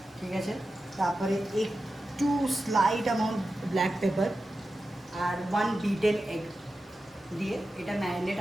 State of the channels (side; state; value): both; normal; correlation 0.92